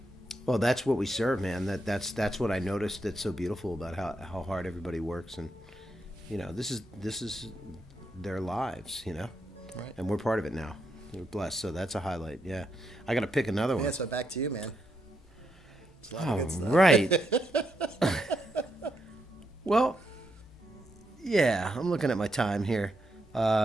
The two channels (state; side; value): normal; both; correlation 0.81